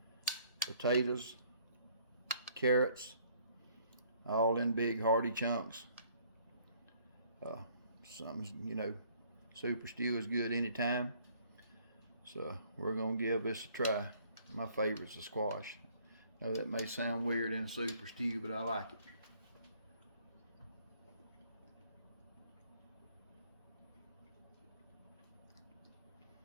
potatoes, carrots, all in big hearty chunks. Something, you know, super stew is good anytime. So we're gonna give this a try. My favorite's the squash. I know that may sound weird in a super stew, but I like it.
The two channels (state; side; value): inverted; both; correlation -0.61